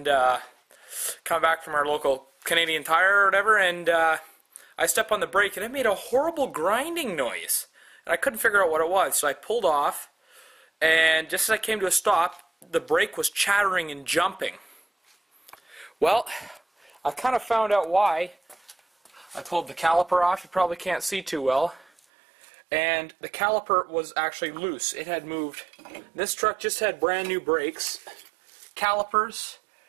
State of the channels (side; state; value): left; drops out; at 21.9 s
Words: coming back from our local Canadian Tire or whatever, and I stepped on the brake and it made a horrible grinding noise. And I couldn't figure out what it was, so I pulled off, and just as I came to a stop, the brake was chattering and jumping. Well, I kind of found out why. I pulled the caliper off, you probably can't see too well, and the caliper was actually loose. It had moved. This truck just had brand new brakes, calipers,